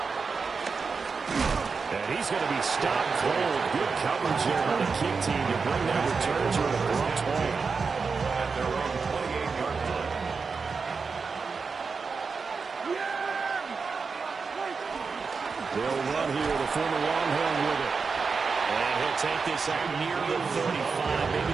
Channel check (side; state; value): left; quieter; 5.0 dB